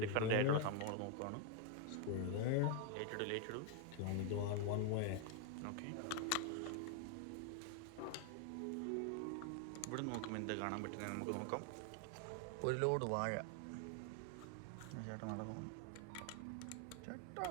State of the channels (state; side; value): different; both; correlation 0.01